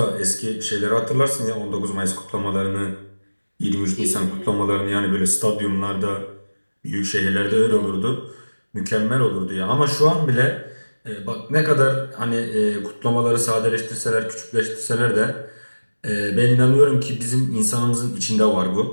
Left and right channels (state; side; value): inverted; both; correlation -1.00